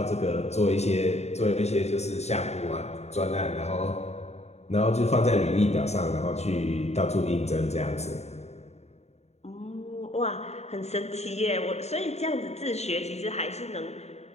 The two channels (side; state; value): right; late; 0.31 ms